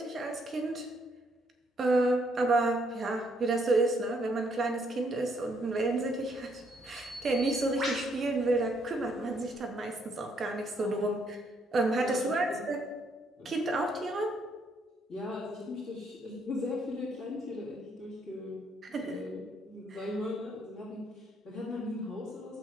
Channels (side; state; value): both; normal; correlation 0.71